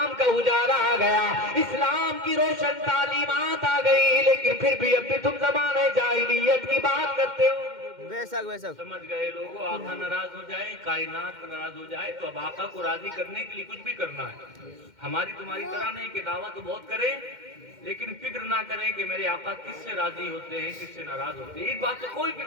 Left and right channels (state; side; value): late; left; 2.1 ms